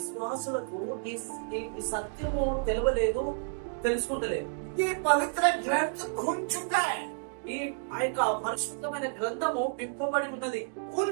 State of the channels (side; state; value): left; silent; digital silence